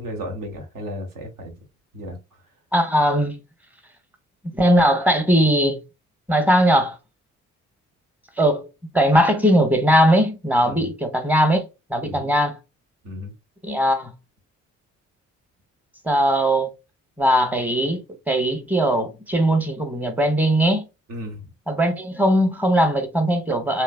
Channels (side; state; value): both; normal; correlation 0.70